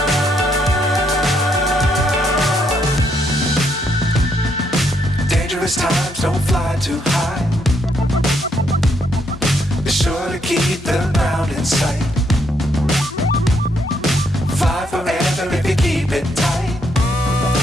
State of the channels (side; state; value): both; normal; correlation 0.74